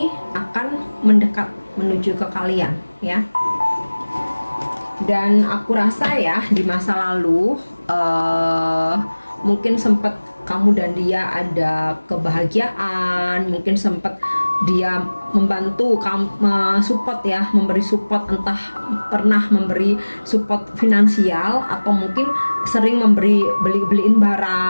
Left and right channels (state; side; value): inverted; both; correlation -1.00